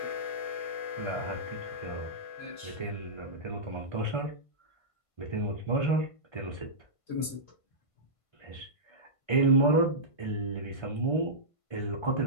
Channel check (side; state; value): right; late; 1.5 ms